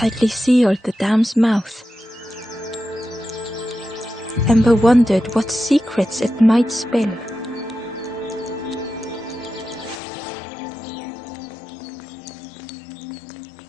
sealed the dam's mouth. Ember wondered what secrets it might spill.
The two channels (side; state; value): right; drops out; at 10.0 s